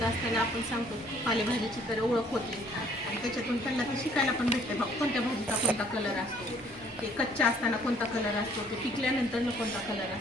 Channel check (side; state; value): both; normal; correlation 0.60